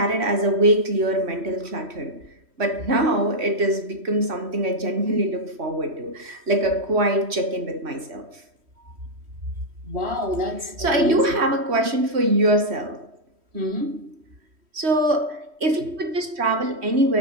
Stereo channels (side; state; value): left; late; 3.1 ms